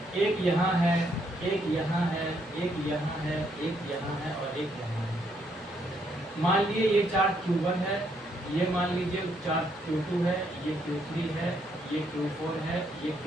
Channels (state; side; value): noise; right; hum, 29 dB below the sound